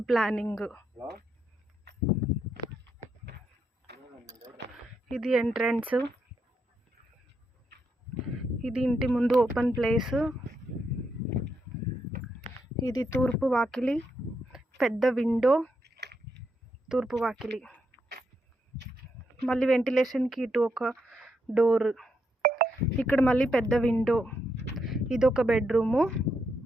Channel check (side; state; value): both; normal; correlation 0.80